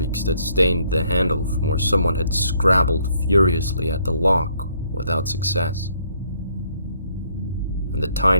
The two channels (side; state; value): both; inverted; correlation -0.68